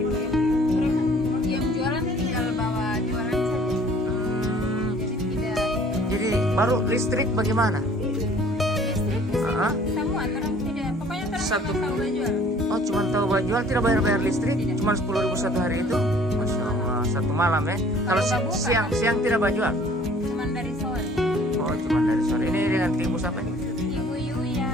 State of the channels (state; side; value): normal; both; correlation 0.54